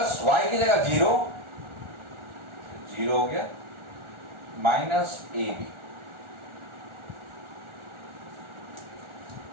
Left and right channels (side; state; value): left; late; 1.4 ms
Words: Y की जगह 0 हो गया माइनस ए बी।